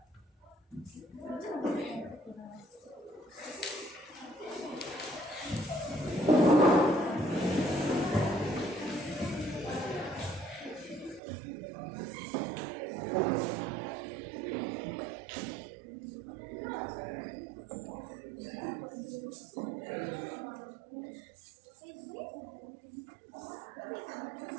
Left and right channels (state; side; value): drops out; left; at 11.2 s